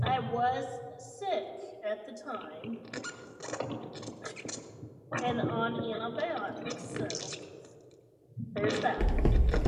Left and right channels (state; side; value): identical; both; correlation 1.00